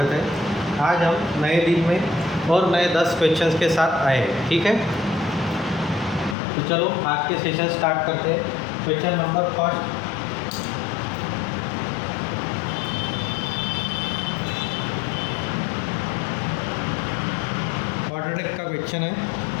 है। आज हम नए दिन में और नए 10 क्वेश्चंस के साथ आए हैं। ठीक है, तो चलो आज के सेशन स्टार्ट करते हैं। क्वेश्चन नंबर फर्स्ट, क्वाड्रेटिक का क्वेश्चन है।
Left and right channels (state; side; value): drops out; right; at 6.4 s